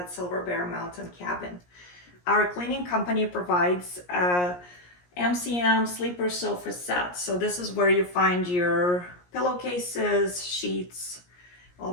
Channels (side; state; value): right; late; 17 ms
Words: Silber Mountain Cabin. Our cleaning company provides a MCM sleeper sofa set. So this is where you find your pillowcases, sheets, all